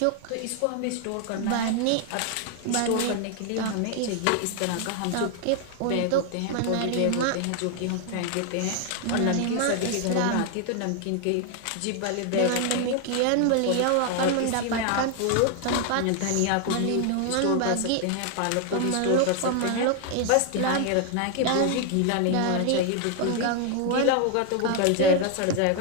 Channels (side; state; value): both; different; correlation 0.00